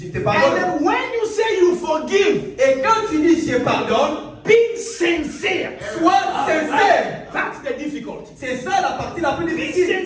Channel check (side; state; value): both; identical; correlation 1.00